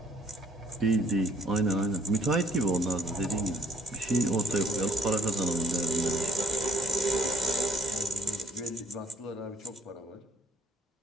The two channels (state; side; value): normal; both; correlation 0.59